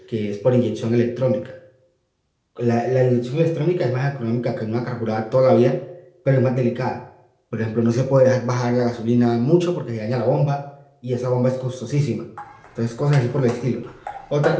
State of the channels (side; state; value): both; identical; correlation 1.00